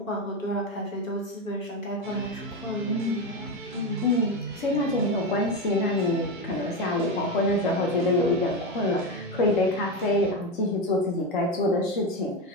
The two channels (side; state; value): both; normal; correlation 0.15